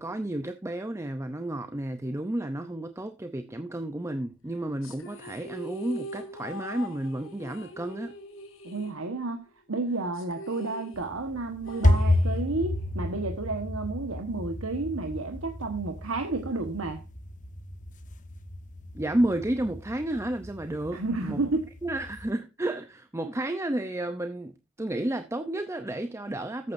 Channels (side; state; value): both; normal; correlation 0.69